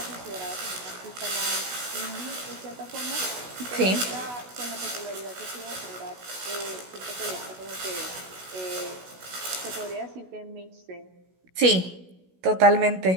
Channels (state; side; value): late; left; 16 ms